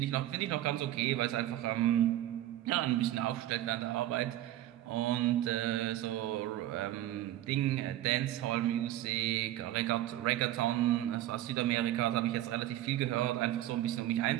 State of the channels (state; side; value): quieter; left; 13.7 dB